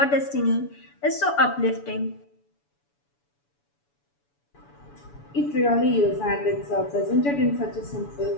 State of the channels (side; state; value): right; late; 7.0 ms